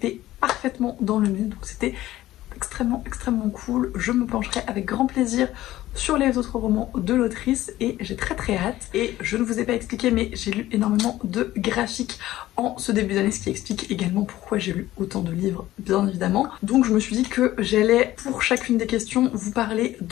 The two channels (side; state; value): right; quieter; 15.2 dB